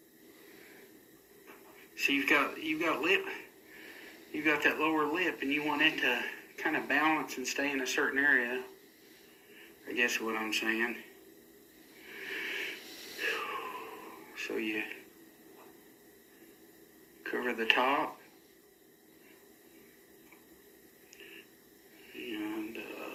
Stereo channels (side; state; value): both; identical; correlation 1.00